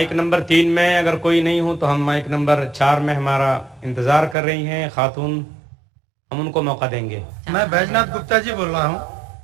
number 3 میں اگر کوئی نہیں ہو تو ہم مائک نمبر 4 میں ہمارا انتظار کر رہی ہیں خاتون، ہم ان کو موقع دیں گے۔ میں بیجناتھ گپتا جی بول رہا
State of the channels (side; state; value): left; drops out; at 4.4 s